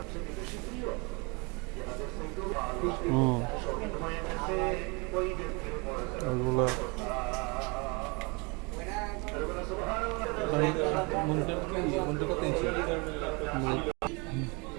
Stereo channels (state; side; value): quieter; left; 29.8 dB